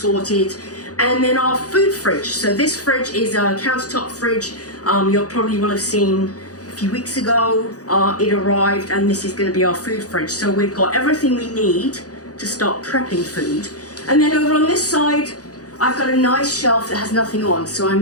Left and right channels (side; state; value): right; late; 0.67 ms